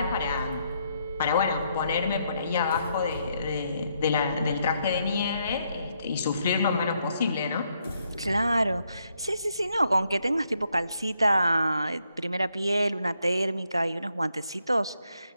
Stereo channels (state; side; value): inverted; both; correlation -0.76